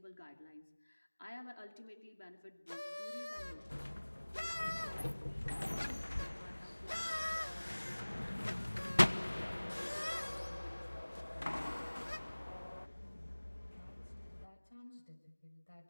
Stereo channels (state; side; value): inverted; both; correlation -1.00